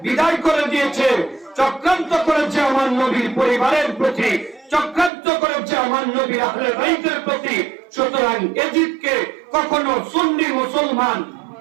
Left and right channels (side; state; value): left; drops out; at 5.1 s